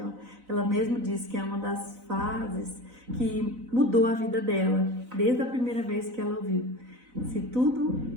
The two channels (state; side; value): late; left; 4.0 ms